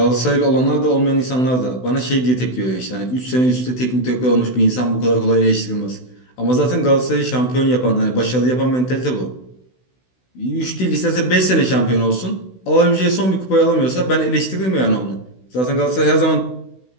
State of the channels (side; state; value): right; late; 16 ms